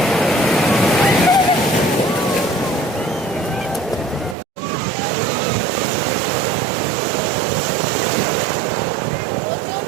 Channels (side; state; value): left; drops out; at 4.4 s